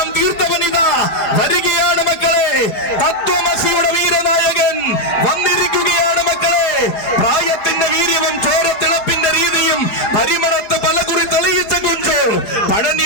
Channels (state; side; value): late; right; 4.9 ms